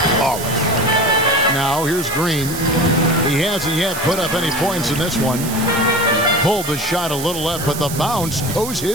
flawless. Now, here's Green. He hasn't yet put up any points in this one. Pulled the shot a little left, but the bounce goes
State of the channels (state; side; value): noise; right; hiss, 8 dB below the sound